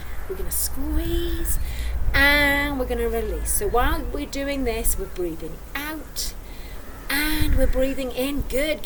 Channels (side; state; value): both; identical; correlation 1.00